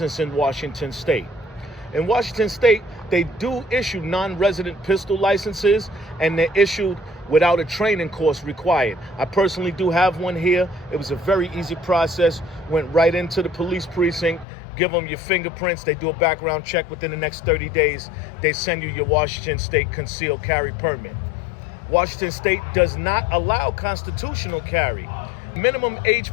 in Washington State. In Washington State, they do issue non-resident pistol licenses, and they're issued without a training course required. I personally do have one here. It was a very easy process. Went right into the police precinct, give them your fingerprints. They do a background check within the next 30 days. They send you your Washington State concealed carry permit. Washington State does not allow constitutional carry. Minimum age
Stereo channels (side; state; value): right; drops out; at 14.5 s